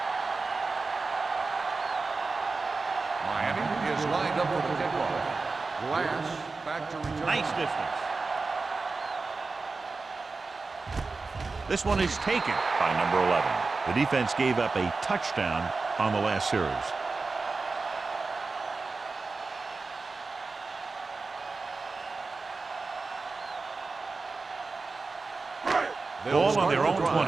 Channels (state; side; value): quieter; left; 4.0 dB